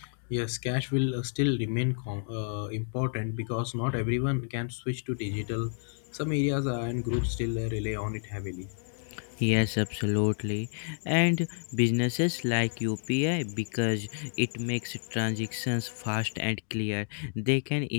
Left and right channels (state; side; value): silent; right; digital silence